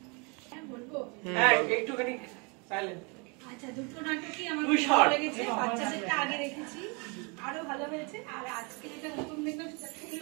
হ্যাঁ, একটুখানি সাইলেন্ট। আচ্ছা, দুটো নাটকই আমার তুই খুব ভালো লেগেছে। বাচ্চাদেরটা আগে দেখেছি, আরো ভালো হয়েছে। আর আজকে যেটা নতুন দেখলাম সেটা খুবই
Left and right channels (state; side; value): quieter; left; 31.9 dB